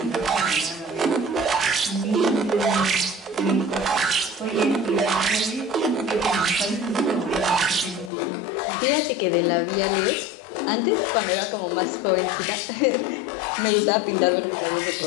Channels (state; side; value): drops out; right; at 8.1 s